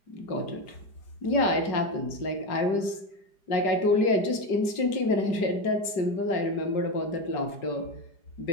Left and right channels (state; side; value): late; right; 4.9 ms